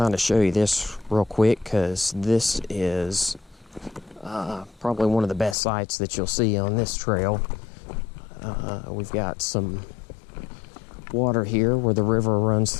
of show you this real quick because this is probably one of the best sights that you'll see on this trail. We've got some water here where the river runs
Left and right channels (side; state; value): right; drops out; at 5.6 s